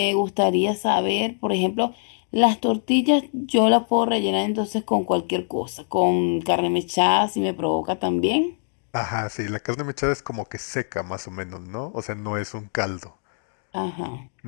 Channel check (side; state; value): right; silent; 63 dB below the other